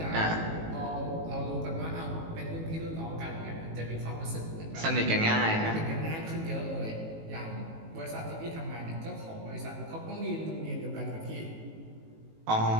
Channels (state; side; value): late; left; 18 ms